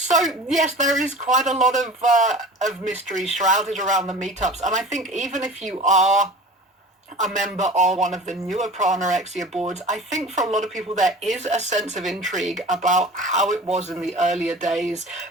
yes, there is quite a lot of mystery shrouded around the meetups, and I think even if you are a member of one of the newer pro-anorexia boards, I think for a lot of people there is a sense of intrigue about how it was in the earlier days,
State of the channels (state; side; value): normal; both; correlation 0.38